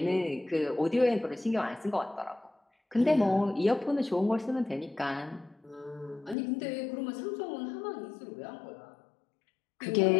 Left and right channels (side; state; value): right; drops out; at 6.4 s